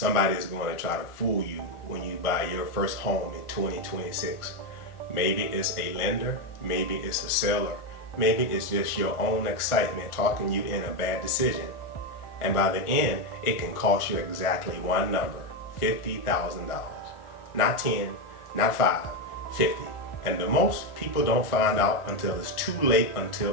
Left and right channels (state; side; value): late; right; 1.4 ms